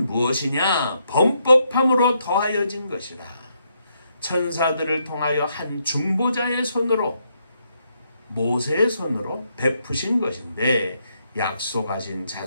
무엇이냐? 범법함으로 더하여진 것이라. 천사들을 통하여 한 중보자의 손으로 모세의 손으로 베푸신 것인데 약속하신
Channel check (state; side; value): inverted; both; correlation -0.77